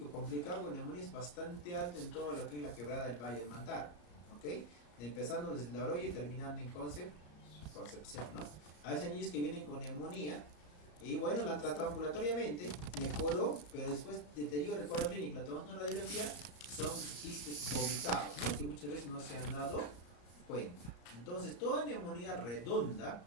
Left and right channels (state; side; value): late; right; 34 ms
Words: complicado con neumonía es bastante alta en todo lo que es la quebrada del Valle del Mantaro. ¿Ok? Empezando desde la Oroya y terminando en Concepción, ¿no? A veces hay niños que vienen con neumonía y bueno, la han tratado ambulatoriamente, mejoró, pero después deteriora el cuadro clínico, la tomamos una radiografía, son quistes vomitados, ¿no? Que muchas veces no se han dado cuenta. Entonces, toda neumonía redonda